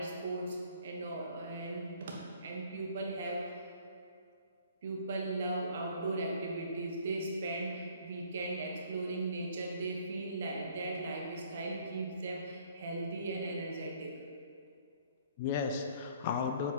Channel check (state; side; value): inverted; both; correlation -0.58